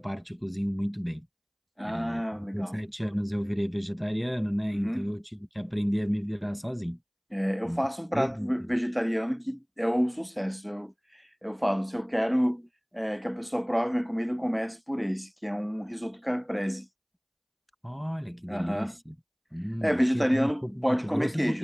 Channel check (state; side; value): identical; both; correlation 1.00